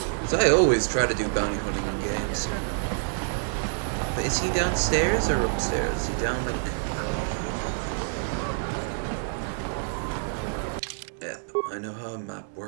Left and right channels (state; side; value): silent; left; digital silence